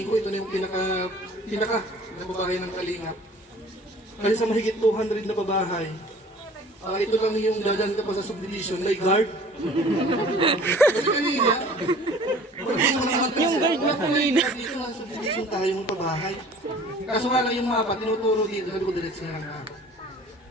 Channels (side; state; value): both; normal; correlation 0.48